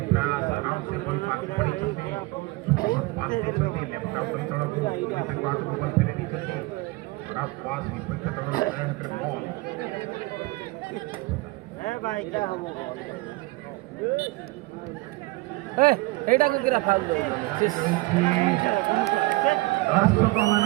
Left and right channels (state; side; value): quieter; left; 22.2 dB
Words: ପ୍ରୟାସ ଆରାମ ସେ ବଲ୍ ପାସ୍ ପଡ଼ିଛନ୍ତି ପାସ୍ ଦେଇଛନ୍ତି ଲେଫ୍ଟ ଆଉଟ୍ ଅଞ୍ଚଳକୁ ତାଙ୍କ ହାତକୁ ବଲ୍ ଫେରି ଦେଇଛନ୍ତି ଖରାପ ପାସ୍ ବିପକ୍ଷ ଦଳର ହାତରେ ବଲ୍ এইটা কোন কিরা ফাউল দো সিস